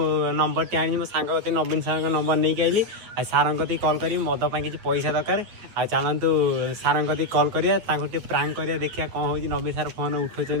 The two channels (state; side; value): late; left; 9.3 ms